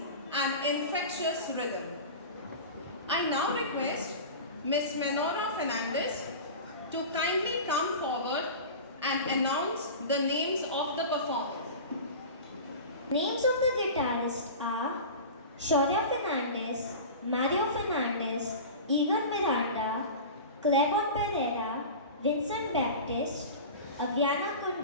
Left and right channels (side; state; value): both; inverted; correlation -0.32